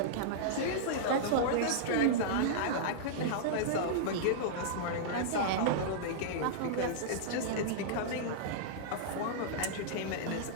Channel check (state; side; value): different; both; correlation -0.02